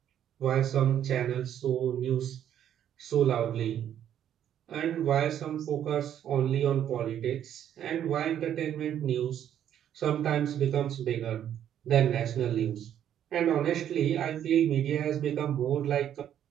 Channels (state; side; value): quieter; left; 10.2 dB